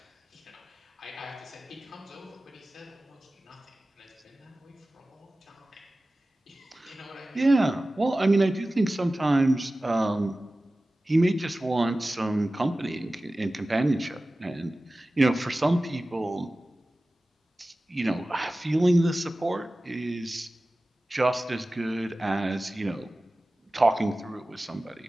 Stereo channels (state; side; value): normal; both; correlation 0.96